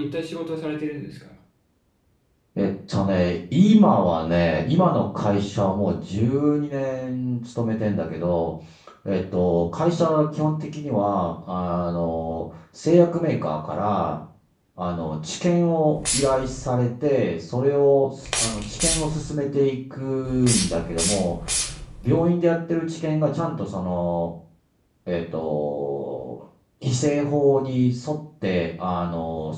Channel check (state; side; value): identical; both; correlation 1.00